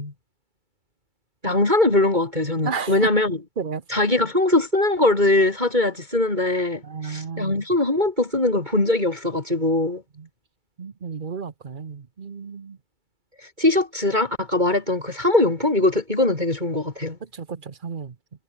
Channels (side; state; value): left; late; 2.2 ms